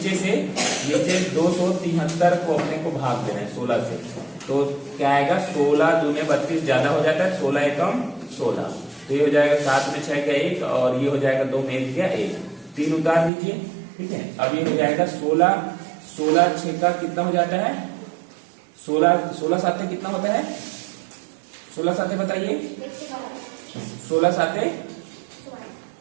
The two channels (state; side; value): drops out; left; at 13.3 s